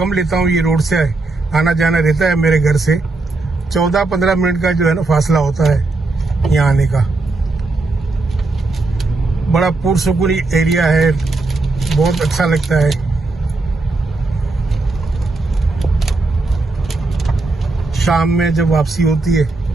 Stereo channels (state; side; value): quieter; left; 3.3 dB